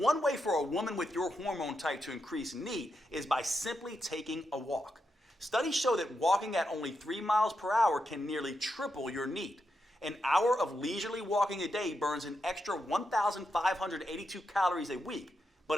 way for a woman with your hormone type to increase NEAT is by simply taking a walk. Studies show that walking at only 3 miles per hour can nearly triple your NEAT. An hour of leisurely walking a day burns an extra 1,582 calories a week.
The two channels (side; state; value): both; normal; correlation 0.85